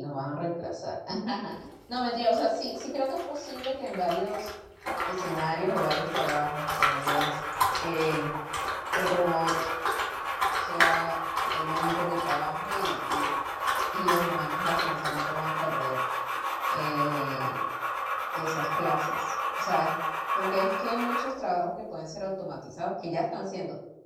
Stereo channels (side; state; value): both; identical; correlation 1.00